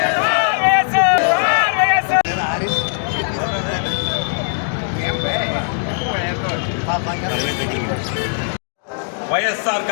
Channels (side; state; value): right; silent; digital silence